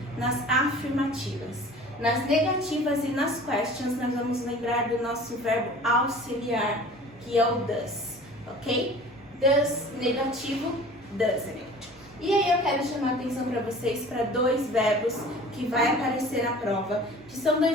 nas afirmativas. Nas negativas e nas questions, nós vamos lembrar do nosso verbo auxiliar, que é o does, ok? Does negativo, doesn't it. E aí eu quero chamar a atenção para vocês para dois verbos que vai aparecer na prova, que são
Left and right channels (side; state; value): both; normal; correlation 0.44